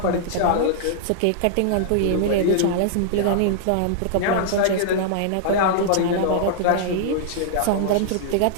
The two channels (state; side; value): different; both; correlation -0.02